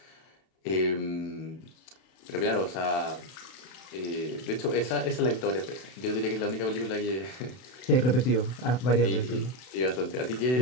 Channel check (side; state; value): right; late; 32 ms